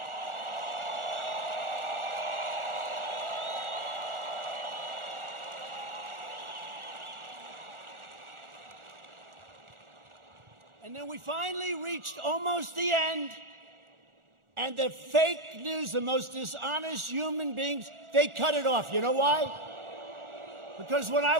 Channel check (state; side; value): late; left; 1.4 ms